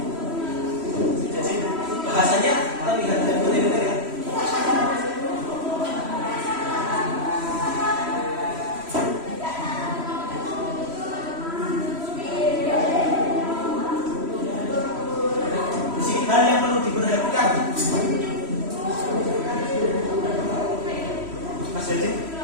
Jadi bahasanya terlihat dari materi ya. Hal yang perlu diperhatikan, Mas Jadi,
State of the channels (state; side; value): late; left; 3.1 ms